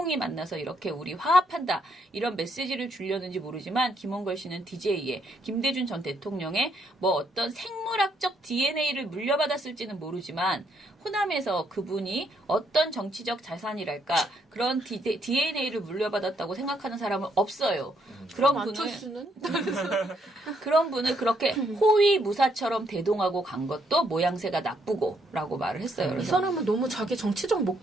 만나서 이렇게 우리 화합한다 이런 메시지를 주려는지 모르지만 김원걸 씨는 DJ에 김대중 전 대통령의 뭐 어떤 생물학적 DNA를 DNA를 물려받았을지는 모르지만 호남에서 그분이 어떤 정치적 자산이랄까 그런 DNA를 물려받았다고 생각하는 사람은 없어요. 그런 분을 안철수는? 그런 분을 그렇게 호위무사처럼 대동하고 간 것도 모양새가 나쁘고라고 말을 했어요. 이 그래서 사람은 너무 자기 정치적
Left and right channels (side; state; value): both; normal; correlation 0.74